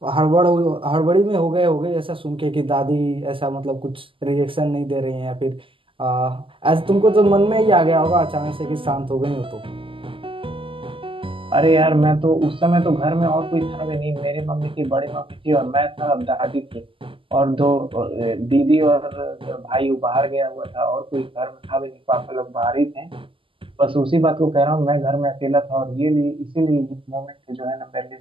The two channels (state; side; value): late; left; 0.25 ms